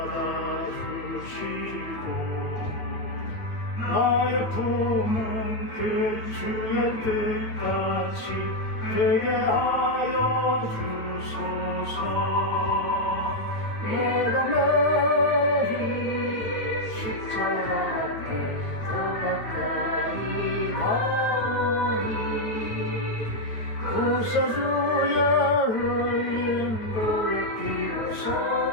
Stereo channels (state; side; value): late; right; 9.1 ms